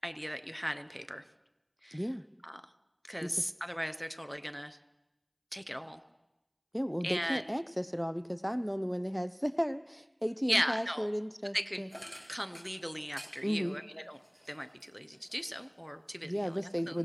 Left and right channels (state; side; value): identical; both; correlation 1.00